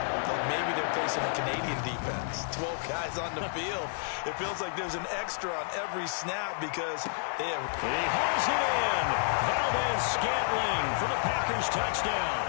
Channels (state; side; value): silent; right; 58 dB below the other